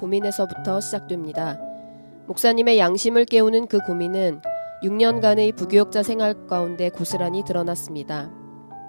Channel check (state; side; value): inverted; both; correlation -1.00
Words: 시작됩니다. 목사님의 양심을 깨우는 그 고민은 6년간의 부교역자 생활 가운데 고스란히 드러났습니다.